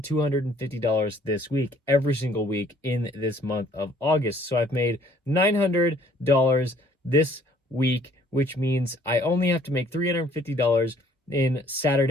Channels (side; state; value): both; normal; correlation 0.59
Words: this week, every single week in this month of August. So I've made $900 this week, which means I only have to make $350 in